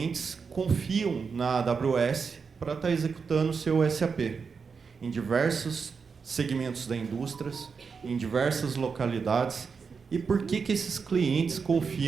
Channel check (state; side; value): quieter; left; 5.5 dB